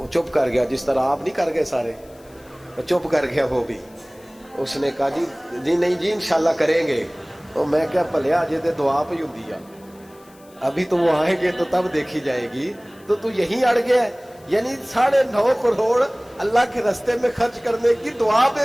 چپ کر گیا، جس طرح آپ نہیں کر گئے سارے، چپ کر گیا وہ بھی. اس نے کہا جی نہیں جی انشاءاللہ کریں گے. تو میں کیا پلیا جی تے دعا پہ ہی ہوندی ہے، ابھی تو وہ آئیں گے تو تب دیکھی جائے گی. تو یہیں اڑ گیا ہے. یعنی 9.5 کروڑ اللہ کے راستے میں خرچ کرنے کی دعا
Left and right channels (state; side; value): noise; left; hiss, 28 dB below the sound